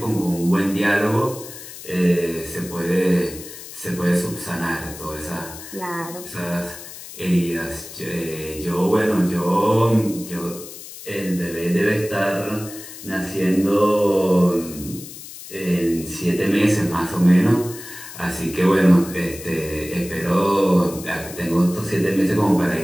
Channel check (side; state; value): left; noise; hiss, 14 dB below the sound